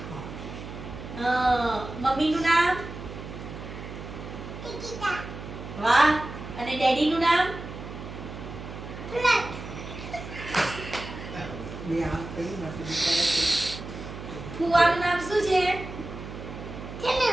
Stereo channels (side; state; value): right; noise; hum, 10 dB below the sound